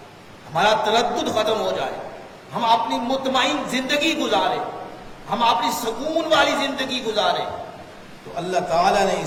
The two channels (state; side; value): identical; both; correlation 1.00